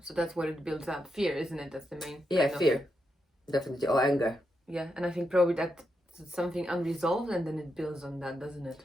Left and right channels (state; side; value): normal; both; correlation 0.84